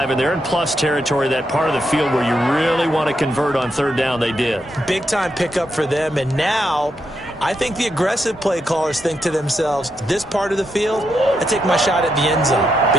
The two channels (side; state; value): both; normal; correlation 0.82